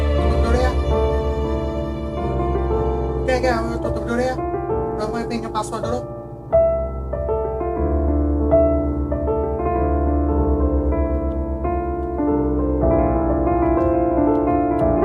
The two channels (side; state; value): both; identical; correlation 1.00